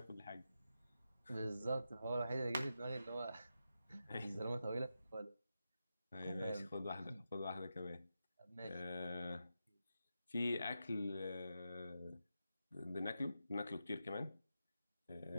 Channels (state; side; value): inverted; both; correlation -0.88